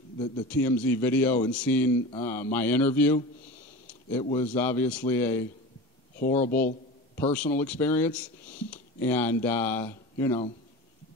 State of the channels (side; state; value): both; normal; correlation 0.31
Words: the TMZ video and seen my interview. It was obviously a horrible personal experience, and there's